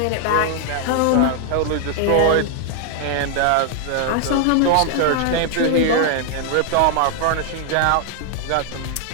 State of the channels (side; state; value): both; different; correlation 0.00